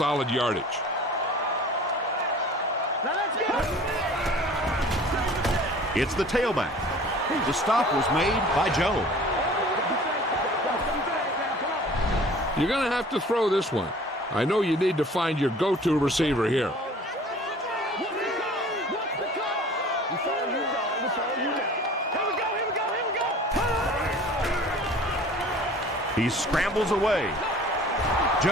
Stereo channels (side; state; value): both; normal; correlation 0.46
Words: yardage. Now let's go. It's the tailback. The stop was made by Joe. You're going to have to throw this one. I know you need to find your go-to receiver here. He scrambles away.